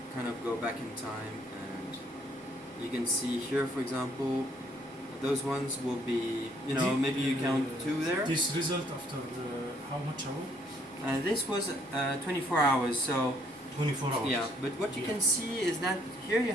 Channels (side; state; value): both; normal; correlation 0.66